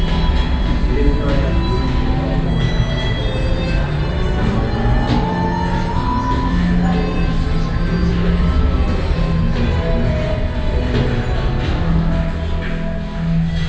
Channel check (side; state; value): both; identical; correlation 1.00